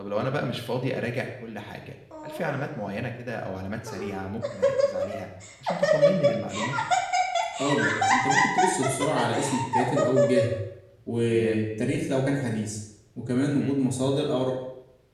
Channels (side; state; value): both; identical; correlation 1.00